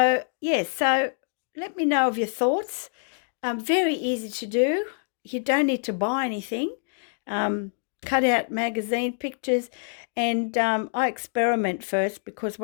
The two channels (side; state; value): right; silent; digital silence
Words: so let me know of your thoughts. Very easy to do. You don't need to buy anything. Cut out magazine pictures, and I experiment first, because